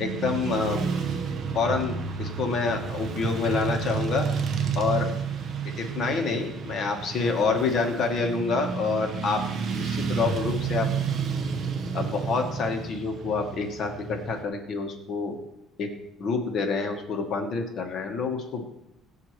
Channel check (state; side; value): normal; both; correlation 0.56